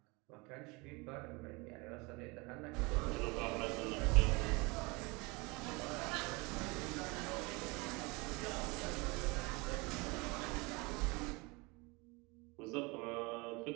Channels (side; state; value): left; quieter; 26.6 dB